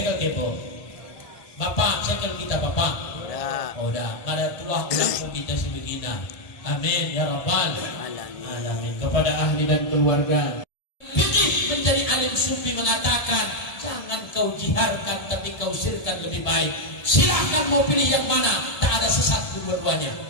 kepo. Bapak, segel kita Bapak. Udah. Ada tuah ulang kita sebegini. Amin ya Rabbal Alamin. Kepada ahli dan keluarga. Fikih menjadi alim sufi mengatakan, jangan kau jiharkan tapi kau sirkan lebih baik. Silahkan mau pilih yang mana. Tak ada sesat dua-duanya.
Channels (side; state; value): right; late; 1.7 ms